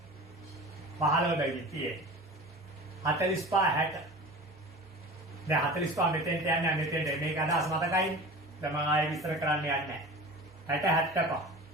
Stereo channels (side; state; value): right; noise; hum, 29 dB below the sound